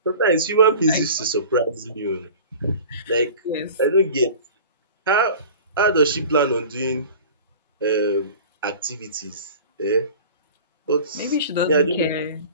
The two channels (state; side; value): inverted; both; correlation -0.40